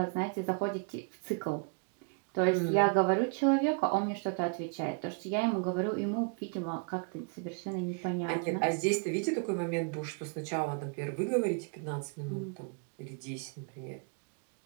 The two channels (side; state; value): left; quieter; 38.3 dB